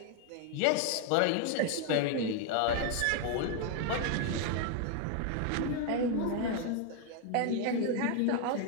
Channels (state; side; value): different; both; correlation 0.00